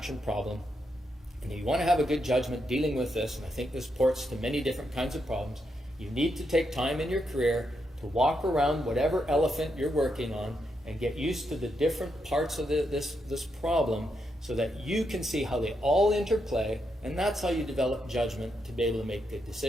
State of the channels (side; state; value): both; normal; correlation 0.82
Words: problem, and you want to have a good judgment dealing with this, and I think this ports to many different kinds of problems, you need to take time in your career to walk around whatever elephant you're working on and get used to the different parts of this problem so that you can see how they all interplay, and that's how you develop judgment to be able to make good